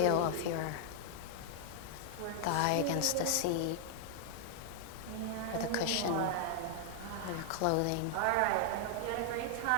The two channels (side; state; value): both; different; correlation 0.00